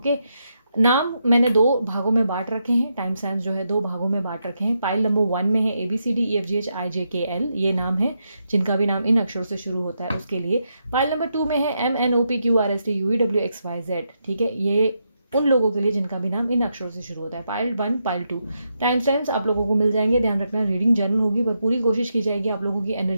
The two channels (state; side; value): inverted; both; correlation -0.82